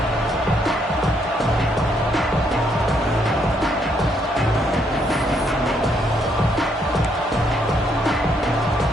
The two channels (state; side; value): normal; both; correlation 0.72